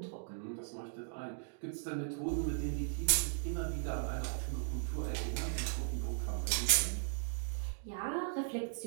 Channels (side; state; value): left; silent; digital silence